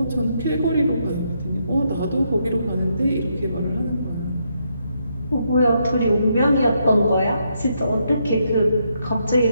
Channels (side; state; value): both; inverted; correlation -0.78